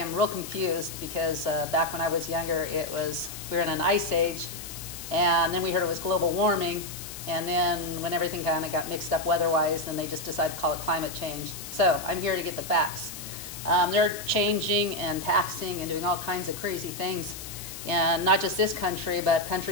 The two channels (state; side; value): noise; left; hiss, 11 dB below the sound